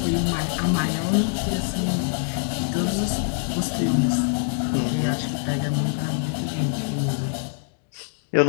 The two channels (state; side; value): silent; right; 62 dB below the other